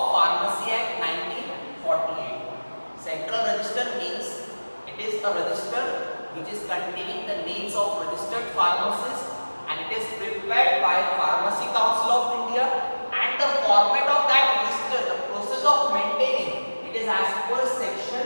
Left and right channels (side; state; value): both; inverted; correlation -1.00